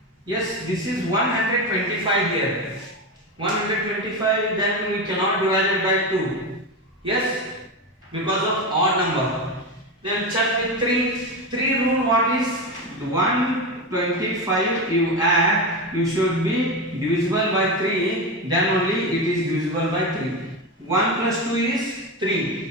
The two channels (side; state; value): both; normal; correlation 0.18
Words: Yes, this is 125 here. 125, then we cannot divide it by 2. Yes, because of odd number. Then check with 3. 3 rule what is? 125 you add, you should be divisible by 3, then only it is divisible by 3. 1 plus 2 is